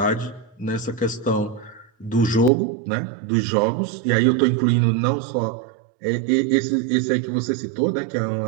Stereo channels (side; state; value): left; drops out; at 2.5 s